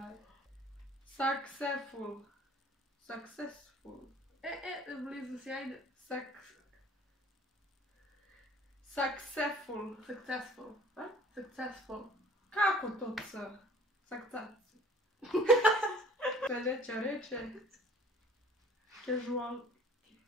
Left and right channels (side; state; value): both; normal; correlation 0.51